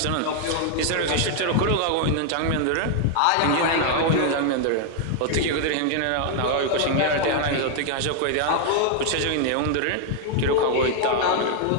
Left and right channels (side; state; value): both; different; correlation 0.00